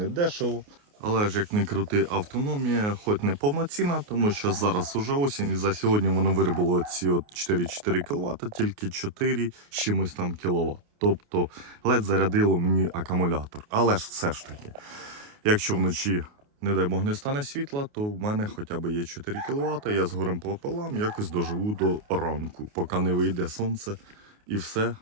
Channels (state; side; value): late; left; 29 ms